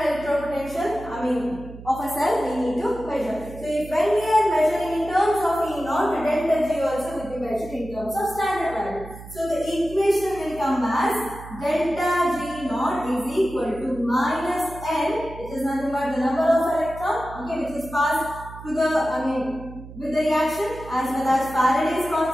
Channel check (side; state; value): right; noise; hum, 15 dB below the sound